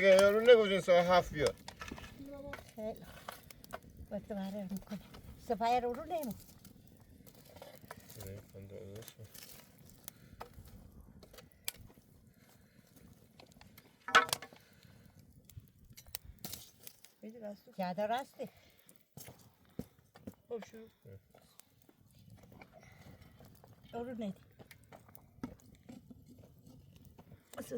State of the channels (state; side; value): identical; both; correlation 1.00